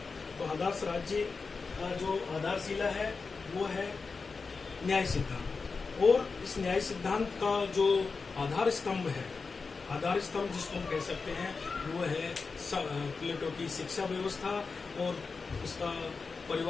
तो आदर्श राज्य का जो आधारशिला है वो है न्याय सिद्धांत। और इस न्याय सिद्धांत का जो आधार स्तंभ है, आधार स्तंभ जिसको हम कह सकते हैं वो है प्लेटो की शिक्षा व्यवस्था और उसका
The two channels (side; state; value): right; quieter; 4.6 dB